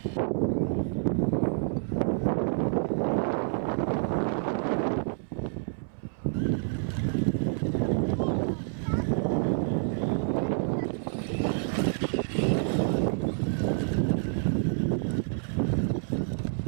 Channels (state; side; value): silent; left; 59 dB below the other